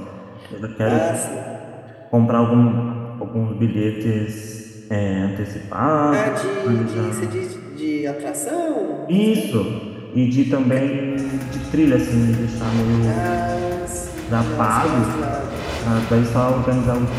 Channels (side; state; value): both; identical; correlation 1.00